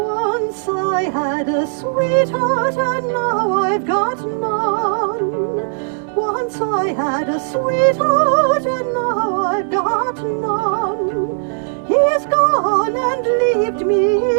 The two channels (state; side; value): silent; left; digital silence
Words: I had a sweetheart and now I've got none. Once I had a sweetheart and now I've got none. He's gone and left me,